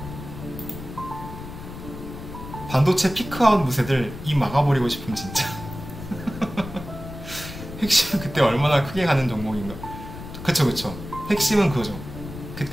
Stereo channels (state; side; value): noise; left; rumble, 11 dB below the sound